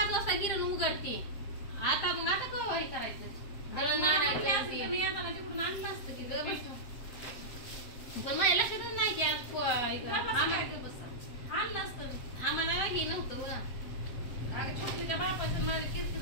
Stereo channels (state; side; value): late; right; 7.7 ms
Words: वाजता गिरण उघडते. आता मग आता केव्हा हे करायचं दळण आणायचं ते. मी येताना तिकडून आणलं असतं की गं बस. पण माझ्या लक्षातच नाही की आज आणलं असतं. आम्हाला हे नव्हतं बघा. अगं छोटलीच्या बापाचं मला